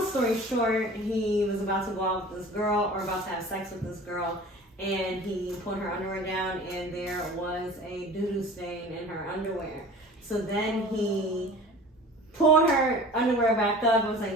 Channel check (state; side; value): normal; both; correlation 0.41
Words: story short, he was about to go out with this girl or about to have sex with this girl, and he put her underwear down and there was a doo-doo stain in her underwear. So then he pulled her underwear back up and was